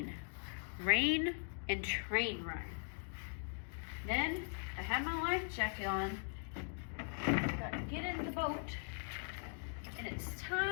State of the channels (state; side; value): silent; right; 51 dB below the other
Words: and train rhyme. Then I have my life jacket on, got to get in the boat, and it's